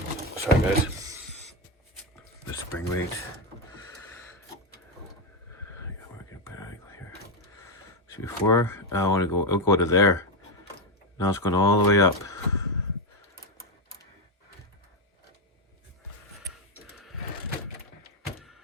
Sorry guys. The spring weight. I gotta work a better angle here. See, before I want to go, it'll go to there. Now it's going all the way up.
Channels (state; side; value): normal; both; correlation 0.08